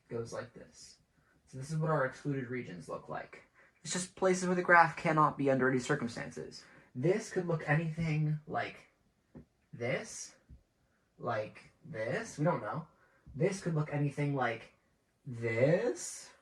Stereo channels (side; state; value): both; identical; correlation 1.00